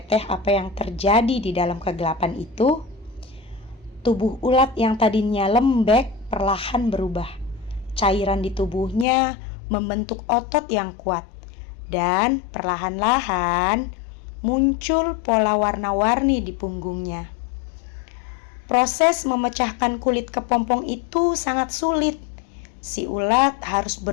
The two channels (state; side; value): drops out; right; at 9.1 s